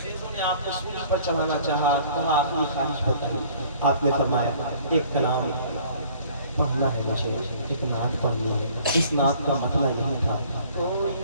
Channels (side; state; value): both; inverted; correlation -0.54